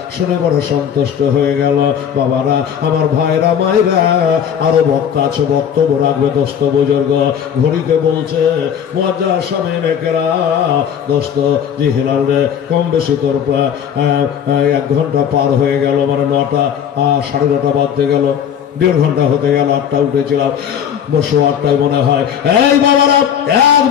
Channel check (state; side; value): quieter; right; 8.5 dB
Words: শুনে বড় সন্তুষ্ট হয়ে গেল। বাবারা, আমার ভাইরা মায়েরা, আরো বক্তা আছে, বক্তব্য রাখবে দোস্ত বুজুর্গ। ঘড়িতে বলছে মুয়াজ্জার সামিন একরা দোস্ত জি হিলাল রে, কম বেশি তোর 1 ঘন্টা পার হয়ে গেল, মানে 9টা 9:30 বাজতে গেল, 1.5 ঘন্টা হতে গেল। 8টা উঠেছিলাম, বসো 8টায় মনে হয়। এই বাবারা